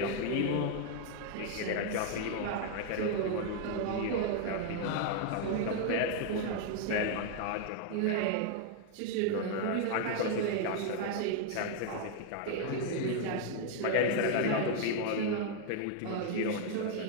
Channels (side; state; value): both; different; correlation 0.00